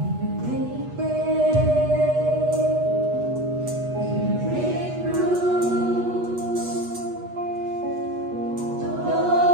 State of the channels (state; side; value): late; left; 8.2 ms